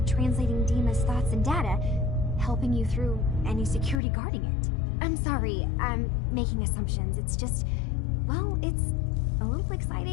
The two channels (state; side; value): drops out; right; at 4.0 s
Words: translating Dima's thoughts and data, helping you through any security guarding it. I'm sorry, I'm making assumptions. It's just, well, it's a little